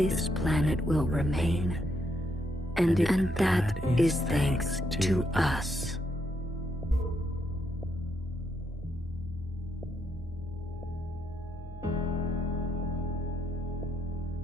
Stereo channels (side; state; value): both; normal; correlation 0.77